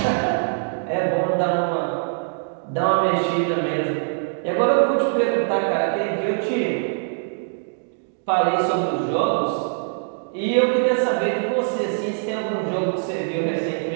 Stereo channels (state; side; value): silent; left; digital silence